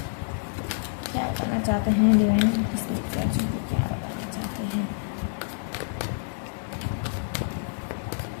क्या बताना चाहते हैं। डिवाइन, उनके स्पिरिट गाइड्स उनको क्या बताना चाहते हैं।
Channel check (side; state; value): right; silent; 60 dB below the other